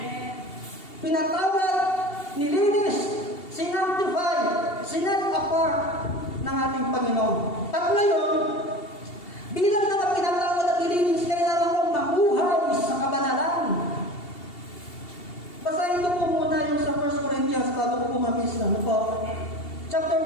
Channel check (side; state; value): right; late; 2.7 ms